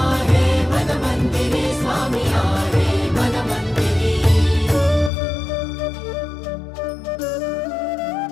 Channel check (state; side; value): drops out; right; at 5.1 s